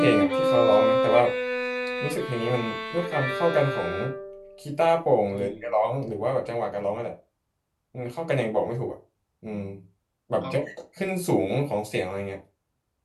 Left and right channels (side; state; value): both; identical; correlation 1.00